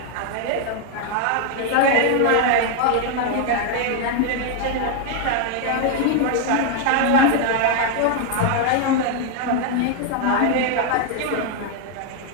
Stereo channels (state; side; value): different; both; correlation 0.00